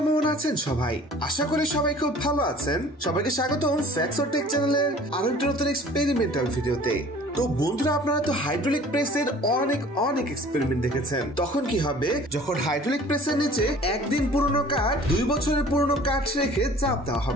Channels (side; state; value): both; normal; correlation 0.48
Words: আছেন সবাই? আশা করি সবাই খুব ভালো আছেন। সবাইকে স্বাগতম ফ্যাক্টস অর টেক চ্যানেলের আরো একটা নতুন এক্সপেরিমেন্টাল ভিডিওতে। তো বন্ধুরা, আপনারা তো হাইড্রোলিক প্রেসের অনেক এক্সপেরিমেন্ট দেখেছেন। তখন কি হবে যখন হাইড্রোলিক প্রেসের নিচে একদিন পুরনো কাঠ 2 বছরের পুরনো কাঠ রেখে চাপ দেওয়া